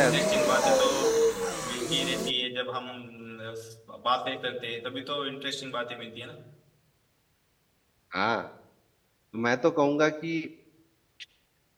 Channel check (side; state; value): both; identical; correlation 1.00